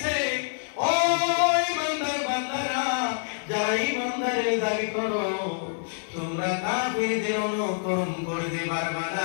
ও ঈমানদার বান্দারা, যারা ঈমানদারের দাবি করো, তোমরা কাফিরদের অনুকরণ করতে পারবে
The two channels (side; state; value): right; silent; digital silence